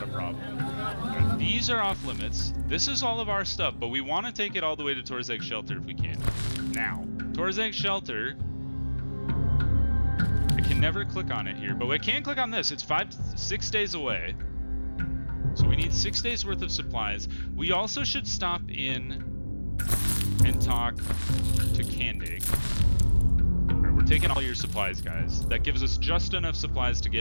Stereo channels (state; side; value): inverted; both; correlation -1.00